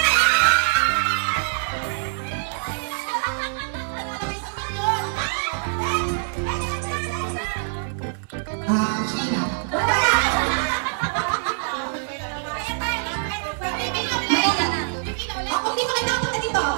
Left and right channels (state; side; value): silent; left; digital silence